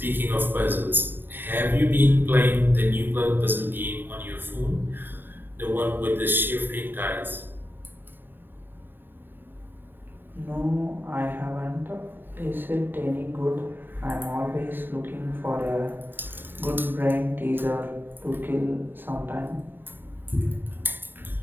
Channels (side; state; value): left; late; 0.094 ms